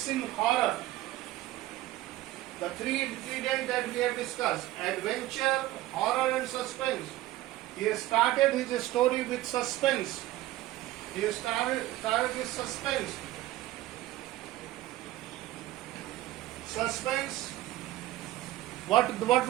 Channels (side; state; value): left; quieter; 15.9 dB